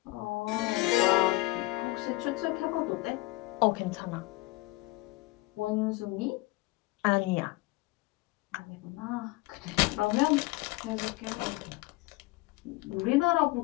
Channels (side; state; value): right; quieter; 21.0 dB